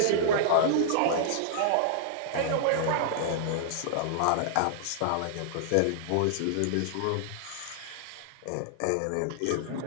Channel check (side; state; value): both; different; correlation -0.01